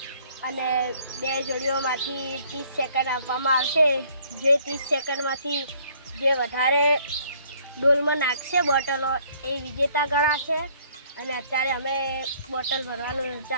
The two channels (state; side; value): inverted; both; correlation -0.60